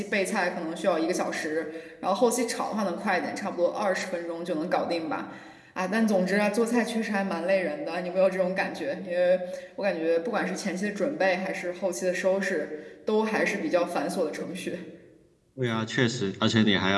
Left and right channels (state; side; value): identical; both; correlation 1.00